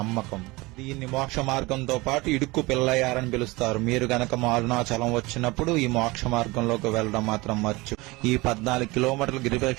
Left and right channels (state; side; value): quieter; left; 22.7 dB